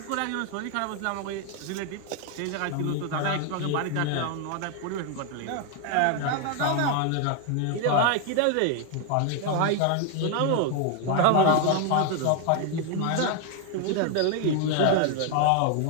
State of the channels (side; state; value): both; different; correlation 0.01